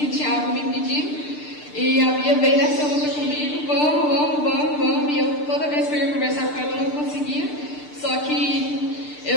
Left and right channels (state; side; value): late; right; 6.7 ms